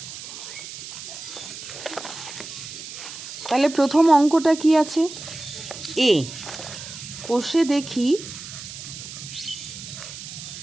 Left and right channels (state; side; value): noise; right; hiss, 11 dB below the sound